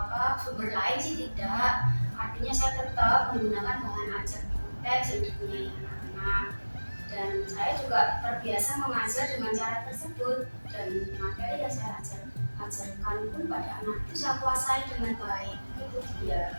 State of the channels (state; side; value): inverted; both; correlation -1.00